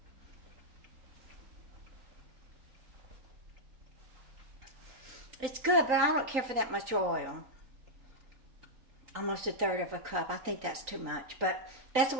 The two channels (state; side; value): late; left; 3.9 ms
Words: It's good, but I don't care for that much oil. Almost 1/3 of a cup. I think that's too much, but that's the